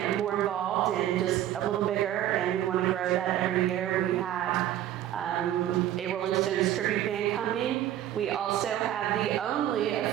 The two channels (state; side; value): quieter; left; 12.1 dB